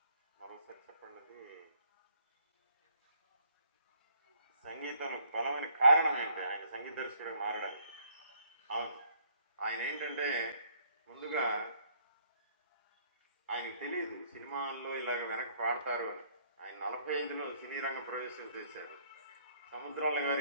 మరోసారి చెప్పండి. అది సంగీతం బలమైన కారణం ఏంటి ఆయన సంగీత దర్శకుడిగా మారడానికి? అవును, ఆయన ఏంటంటే ముందుగా ఆయనకు తెలియదు సినిమాల్లో ఇలాగ వెనక పాడతారు అని. ఆయన 45లో సినీ రంగ ప్రవేశం చేశారు. సముద్రాల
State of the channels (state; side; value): inverted; both; correlation -0.64